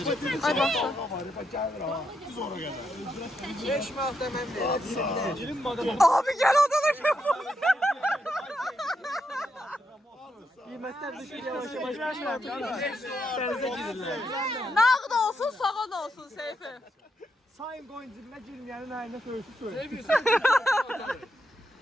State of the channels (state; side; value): normal; both; correlation 0.81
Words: Ay baxsa. 5 manat demem verir. Girin madem. Abi gəl odana gəl. Kıymetler düşür yavaş yavaş düşmem. Denize girirler. Nağd olsun, sağan olsun Seyfi. Sayın koyun cibine girmeyenin ayında söğüşü söyle.